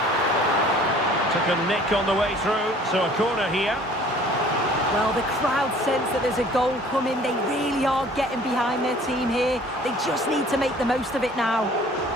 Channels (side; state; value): both; normal; correlation 0.52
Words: Took a nick on the way through, so a corner here. Well, the crowd sense that there's a goal coming. They really are getting behind their team here. They just need to make the most of it now.